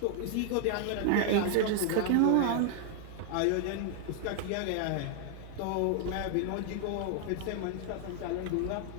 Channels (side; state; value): both; different; correlation 0.00